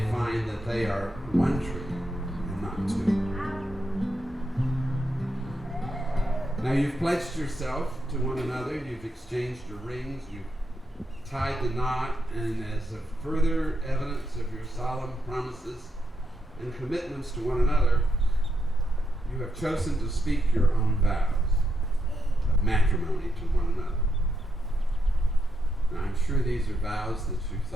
find that they are one tree and not two. Now you've pledged yourself to one another, you've exchanged your rings, you've tied the knot, and as a further evidence of your solemn promises and commitments to one another, you have chosen to speak your own vows of matrimony to one another. Now I'm sure these are vows that you've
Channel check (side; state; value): both; normal; correlation 0.82